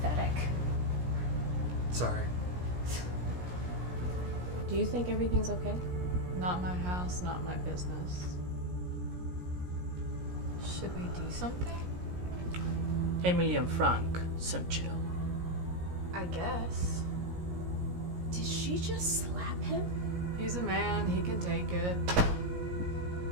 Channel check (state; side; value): late; left; 17 ms